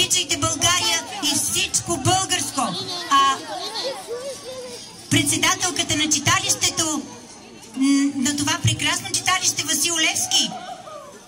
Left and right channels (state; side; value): identical; both; correlation 1.00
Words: България и всичко българско. Председателката на читалището, на това прекрасно читалище Васил Левски,